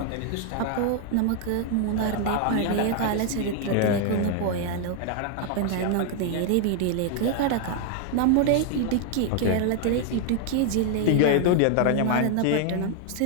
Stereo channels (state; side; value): different; both; correlation 0.00